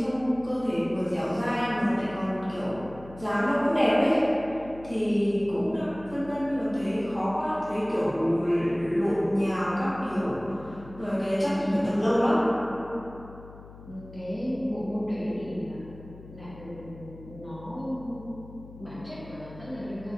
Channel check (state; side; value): noise; left; hum, 17 dB below the sound